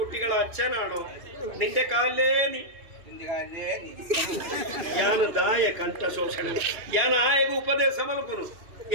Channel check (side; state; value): left; late; 2.6 ms